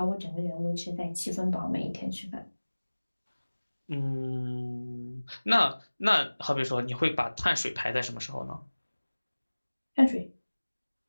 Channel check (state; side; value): inverted; both; correlation -1.00